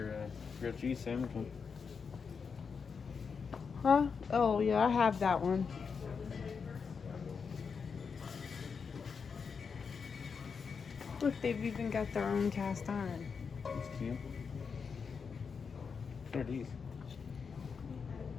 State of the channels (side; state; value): right; quieter; 5.8 dB